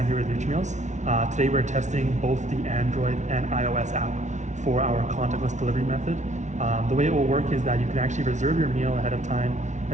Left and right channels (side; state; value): left; late; 0.34 ms